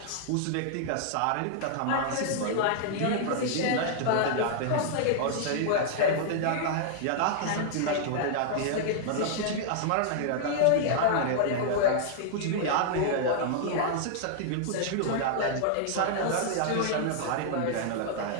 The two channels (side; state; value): both; different; correlation -0.01